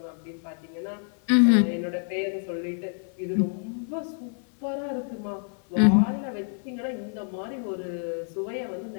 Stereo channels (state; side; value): silent; right; 56 dB below the other